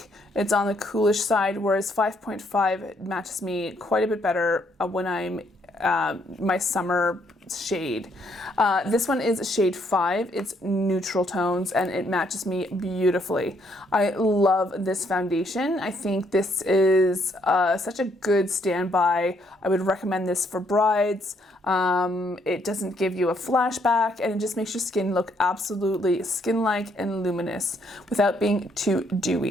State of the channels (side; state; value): both; normal; correlation 0.71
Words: It's on the coolish side, whereas 5.5 matches me quite a bit better when I'm my summer shade. This one is shade 5. It's neutral tones and it matches me beautifully. I love this foundation. I think this is such a good standby. I would recommend this for brides. It doesn't give you a flashback and it just makes your skin look absolutely skin-like and luminous without being too